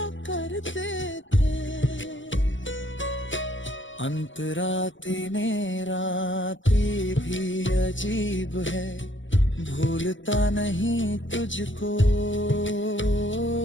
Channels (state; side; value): late; right; 0.55 ms